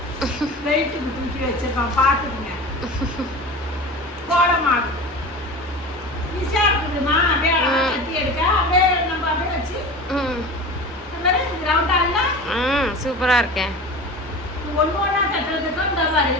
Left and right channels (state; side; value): normal; both; correlation 0.33